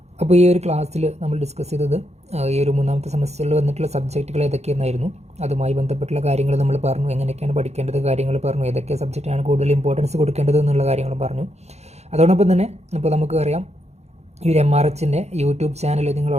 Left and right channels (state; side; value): late; left; 0.31 ms